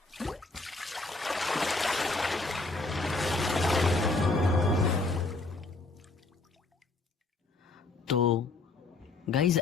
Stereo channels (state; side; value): quieter; right; 3.4 dB